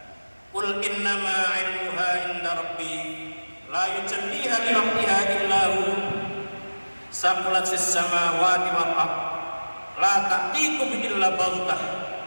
Qul innama 'ilmuha 'inda rabbi la yujalliha li waqtiha illa hu. Saqulat fis samawati wal ard la ta'tikum illa baghtah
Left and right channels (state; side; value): inverted; both; correlation -1.00